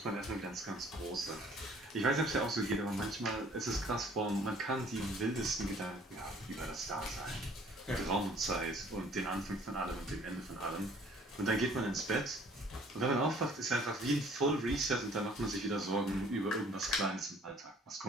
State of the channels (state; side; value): normal; both; correlation 0.56